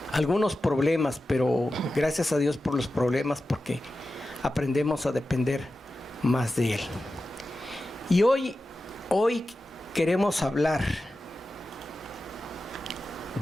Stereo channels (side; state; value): both; normal; correlation 0.93